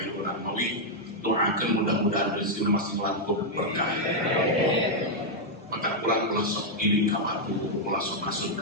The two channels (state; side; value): normal; both; correlation -0.02